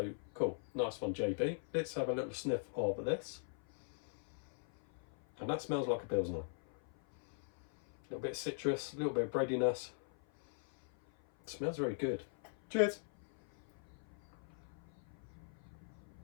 cool, nice one, JB. Let's have a little sniff of this, and that smells like a Pilsner. A little bit of citrus, a little bit of breadiness. It smells very good. Cheers.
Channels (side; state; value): right; silent; 51 dB below the other